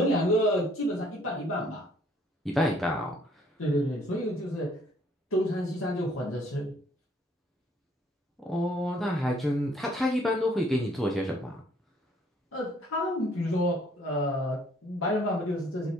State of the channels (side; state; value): both; normal; correlation 0.62